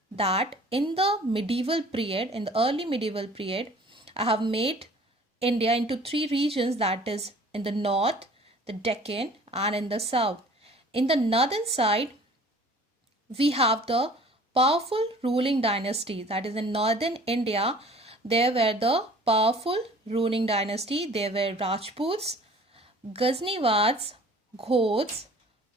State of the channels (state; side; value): normal; both; correlation 0.49